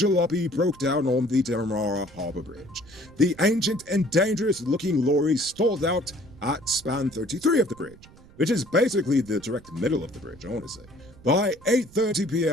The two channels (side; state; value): right; noise; rumble, 23 dB below the sound